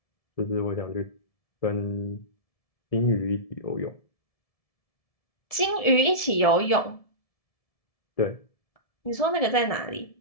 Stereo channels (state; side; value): late; right; 1.7 ms